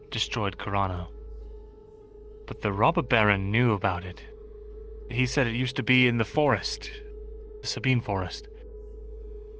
destroyed Carano. But the robber baron knew about it. He said it used to be in the forest, the Sabine forest,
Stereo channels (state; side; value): identical; both; correlation 1.00